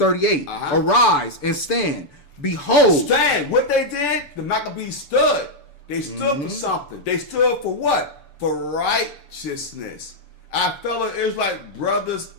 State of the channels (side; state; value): right; late; 6.9 ms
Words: Arise and stand. Behold. Stand. What they did, the Maccabees stood. They stood for something. They stood for what? For righteousness. Our fellow Israelite brothers